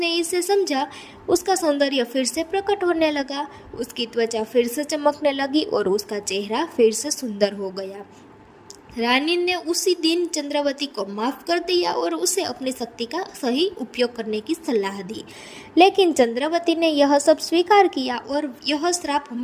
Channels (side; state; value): both; identical; correlation 1.00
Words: इसे समझा, उसका सौंदर्य फिर से प्रकट होने लगा, उसकी त्वचा फिर से चमकने लगी और उसका चेहरा फिर से सुंदर हो गया। रानी ने उसी दिन चंद्रावती को माफ कर दिया और उसे अपनी शक्ति का सही उपयोग करने की सलाह दी। लेकिन चंद्रावती ने यह सब स्वीकार किया और यह श्राप